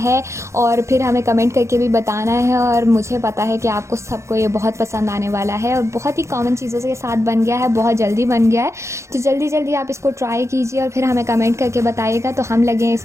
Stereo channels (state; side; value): late; left; 0.14 ms